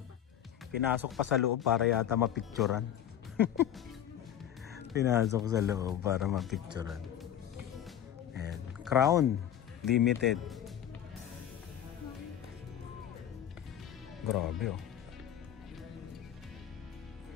Pinasok pa sa loob para yata mapicturan. Pinasok sa loob para mapicturan. And Crown Limited. Grabe oh.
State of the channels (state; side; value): quieter; right; 10.3 dB